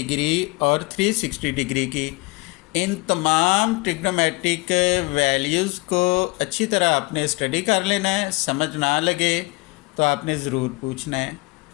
और 360 डिग्री की। इन तमाम ट्रिग्नोमेट्रिक वैल्यूज़ को अच्छी तरह आपने स्टडी कर लेना है। समझ ना लगे तो आपने ज़रूर पूछना है।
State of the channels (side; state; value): right; quieter; 25.2 dB